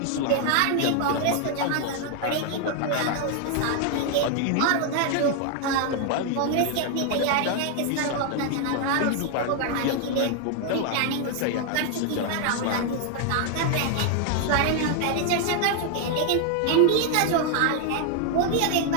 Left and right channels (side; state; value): both; different; correlation 0.00